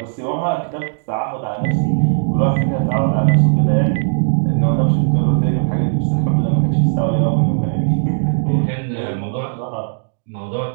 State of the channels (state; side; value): silent; left; 68 dB below the other